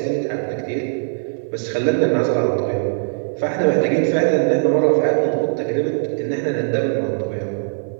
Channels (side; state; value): left; silent; 58 dB below the other